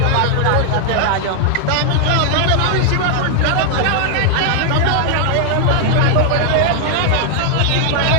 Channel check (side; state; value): both; different; correlation 0.00